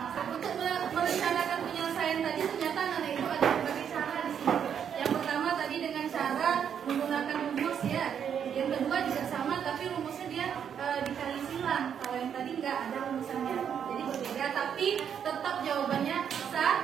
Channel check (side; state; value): left; quieter; 8.2 dB